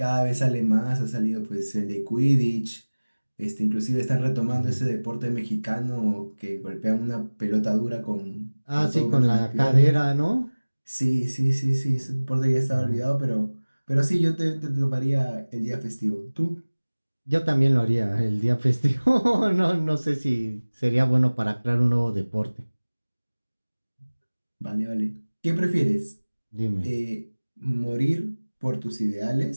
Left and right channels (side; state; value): both; inverted; correlation -1.00